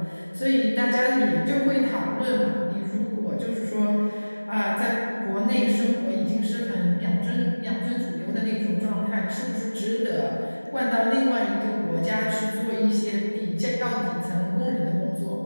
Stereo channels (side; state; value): both; inverted; correlation -1.00